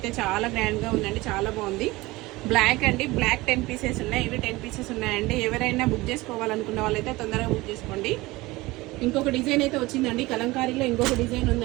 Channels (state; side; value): quieter; left; 20.6 dB